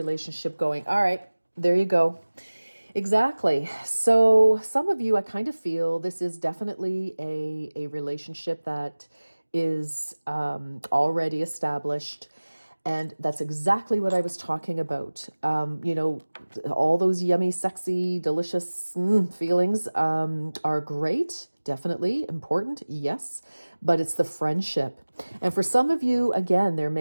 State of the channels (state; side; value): inverted; both; correlation -1.00